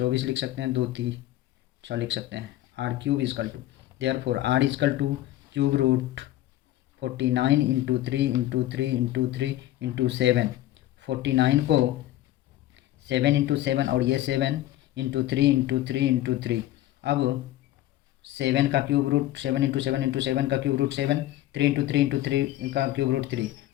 लिख सकते हैं, 2 3 6 लिख सकते हैं। R cube equal to, therefore R equal to cube root 49 into 3 into 3 into 3 into 7। 49 को 7 इंटू 7 और ये 7 इंटू 3 इंटू 3 इंटू 3। अब 7 का क्यूब रूट 7 इंटू 7 इंटू 7 का क्यूब रूट 7, 3 इंटू 3 इंटू 3 का क्यूब रूट 3,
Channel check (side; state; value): right; quieter; 14.4 dB